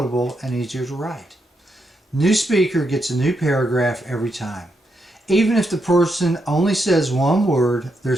and easier to write. New speaker gets a new paragraph every time. Even if the person only says one word, there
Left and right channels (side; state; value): both; normal; correlation 0.81